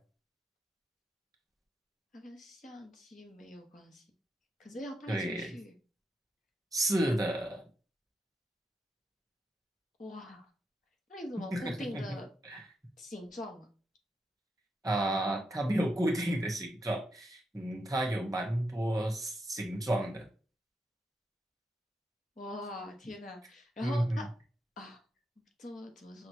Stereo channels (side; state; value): both; normal; correlation 0.83